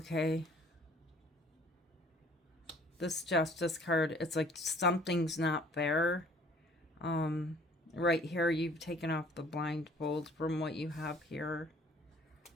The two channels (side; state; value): both; normal; correlation 0.55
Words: This Justice card, it's like something's not fair. Right here, you've taken off the blindfold from what you have here.